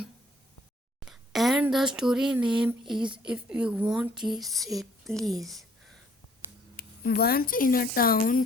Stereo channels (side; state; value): both; normal; correlation 0.60